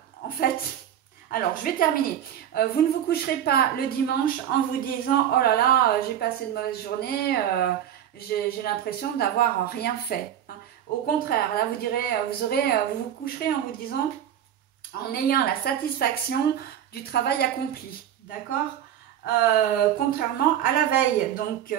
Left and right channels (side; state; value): left; quieter; 10.4 dB